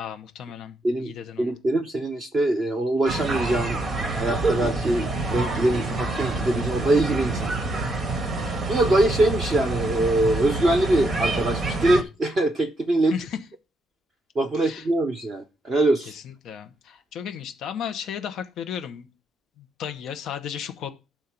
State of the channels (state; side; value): normal; both; correlation 0.78